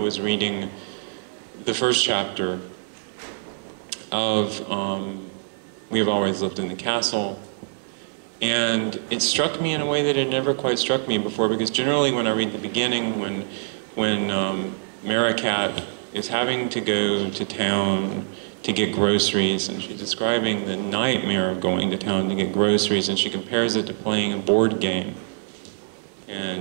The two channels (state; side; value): silent; left; digital silence